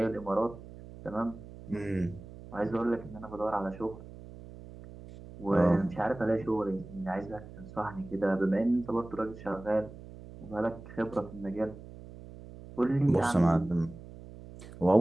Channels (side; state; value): right; noise; hum, 16 dB below the sound